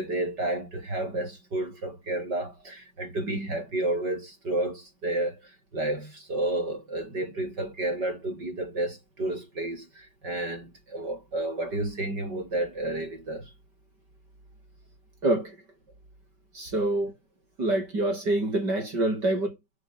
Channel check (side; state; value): left; late; 5.2 ms